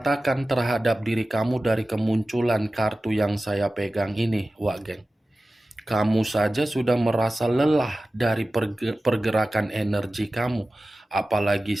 terhadap diri kamu dari kemunculan kartu yang saya pegang ini, Wak Geng? Kamu saja sudah merasa lelah dari pergerakan energi kamu. Apalagi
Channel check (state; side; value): normal; both; correlation 0.95